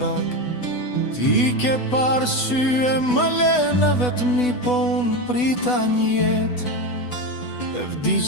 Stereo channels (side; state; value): right; late; 8.1 ms